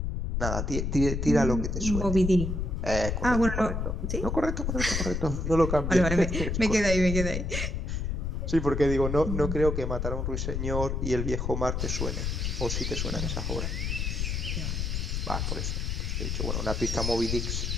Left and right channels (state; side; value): noise; left; rumble, 1 dB below the sound